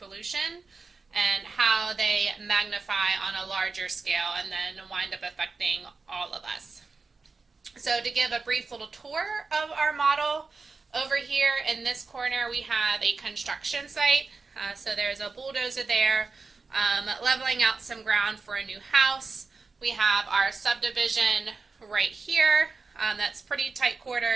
and how they magnify on a larger scale and then wind up affecting all of us. So to give a brief little tour of our model, over here in this corner we have a construction site. So there's a bulldozer there leveling out some ground for a new house. We have our subdivision right here. That's pretty tight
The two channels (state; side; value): quieter; left; 4.3 dB